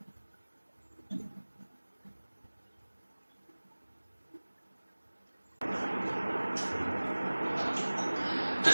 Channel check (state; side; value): inverted; both; correlation -1.00